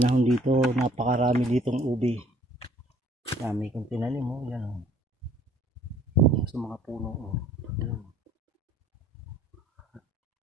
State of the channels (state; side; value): normal; both; correlation 0.58